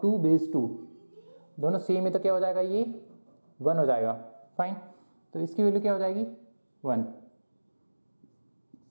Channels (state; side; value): inverted; both; correlation -1.00